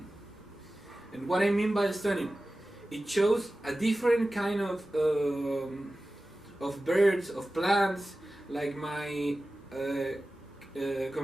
And what I mean by stunning, it shows a different kind of birds, of plants, like my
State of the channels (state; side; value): normal; both; correlation 0.95